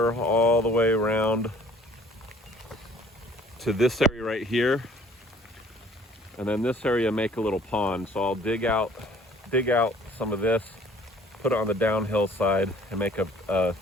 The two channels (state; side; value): normal; both; correlation 0.55